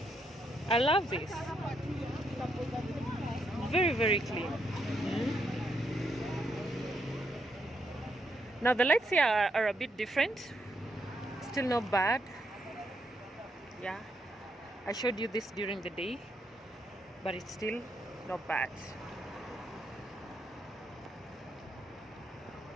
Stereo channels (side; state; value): both; normal; correlation 0.77